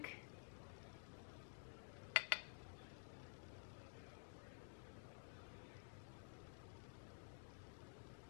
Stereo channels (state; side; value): silent; right; digital silence